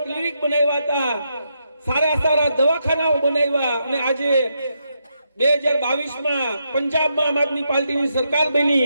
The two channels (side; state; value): both; inverted; correlation -0.81